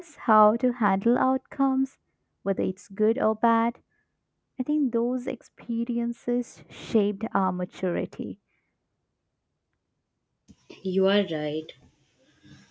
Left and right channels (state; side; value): identical; both; correlation 1.00